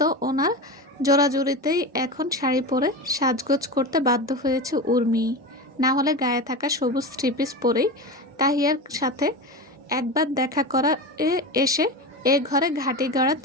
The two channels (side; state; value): both; normal; correlation 0.24